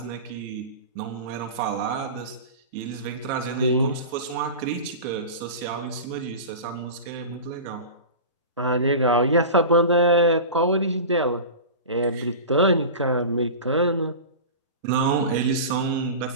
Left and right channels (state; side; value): inverted; both; correlation -0.31